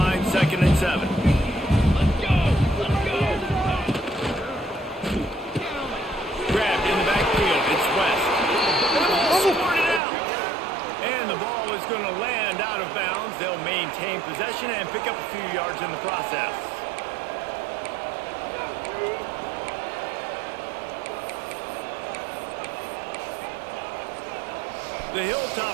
2nd and 7. Grabbed in the backfield. It's West. And the ball squirted out. And the ball is going to land out of bounds. They'll maintain possession and pick up a few yards in the process. The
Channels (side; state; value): left; drops out; at 10.0 s